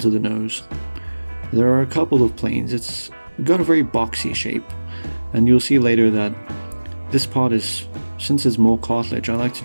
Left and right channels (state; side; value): inverted; both; correlation -1.00